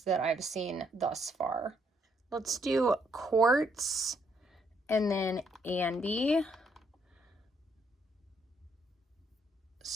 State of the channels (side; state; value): both; normal; correlation 0.72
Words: that I've seen thus far. Let's do Quartz and then Andy.